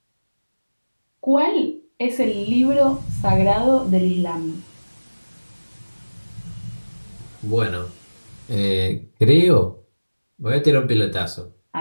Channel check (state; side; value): inverted; both; correlation -1.00